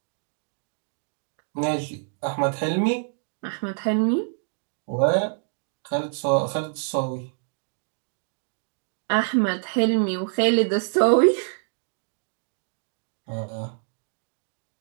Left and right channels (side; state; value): left; silent; digital silence